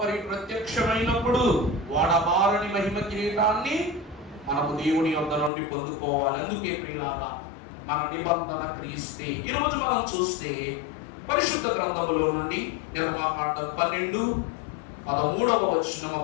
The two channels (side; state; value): right; drops out; at 5.5 s